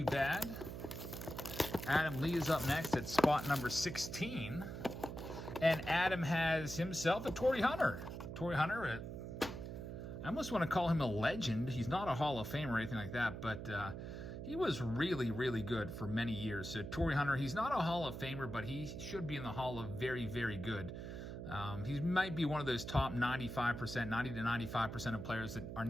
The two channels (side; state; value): right; noise; hum, 8 dB below the sound